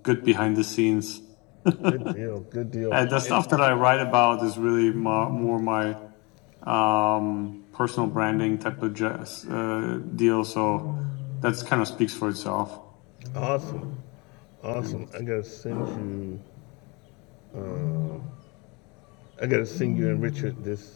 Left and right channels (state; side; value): quieter; right; 28.2 dB